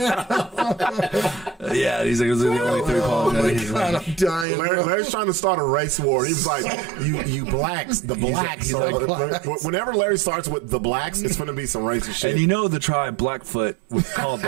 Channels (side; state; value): left; drops out; at 4.5 s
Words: Yeah, he's like, those are the only three Pawnees. He's God, like, I'm dying. bro. Larry's trying to start a race war. He was like, you blacks, the blacks. he's like- Whenever Larry starts with the blacks, it's going to be some racist shit. and you know the tribe Blackfoot was called